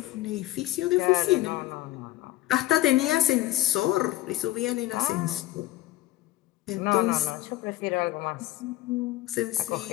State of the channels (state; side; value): quieter; right; 15.8 dB